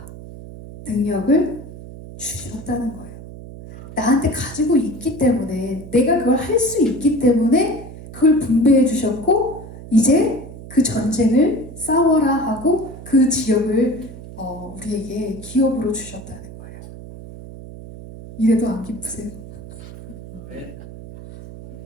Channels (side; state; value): right; noise; hum, 14 dB below the sound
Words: 능력을 주셨다는 거예요. 나한테 가지고 있기 때문에, 내가 그걸 할 수 있기 때문에 그걸 분배해 주셨고, 이제 그 전쟁을 싸워라 하고 그 지역을 우리에게 기업으로 주셨다는 거예요. 이래도 안 기쁘세요? 네.